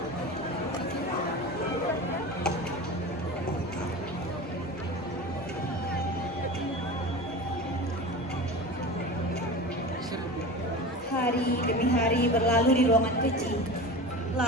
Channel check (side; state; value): both; normal; correlation 0.31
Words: Hari demi hari berlalu di ruangan kecil.